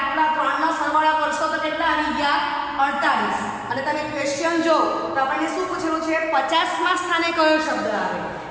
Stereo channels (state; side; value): identical; both; correlation 1.00